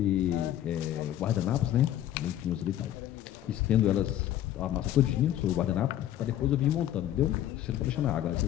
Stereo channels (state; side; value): quieter; right; 12.1 dB